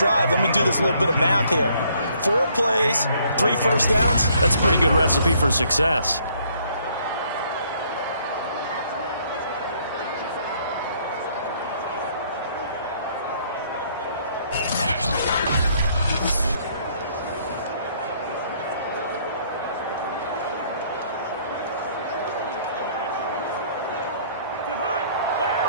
let me do this little bit of math here. 4 plays, 3 first downs. That's a pretty good recipe for success.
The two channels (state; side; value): inverted; both; correlation -0.64